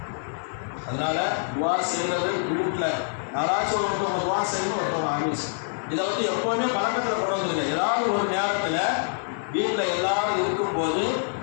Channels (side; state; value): right; silent; digital silence